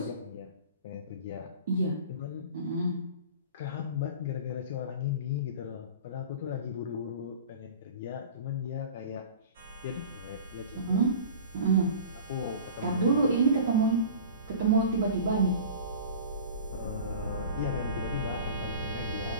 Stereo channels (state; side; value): inverted; both; correlation -0.38